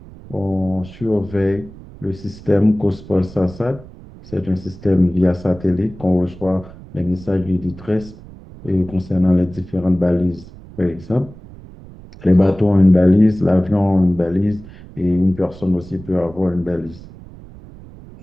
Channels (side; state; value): right; noise; rumble, 18 dB below the sound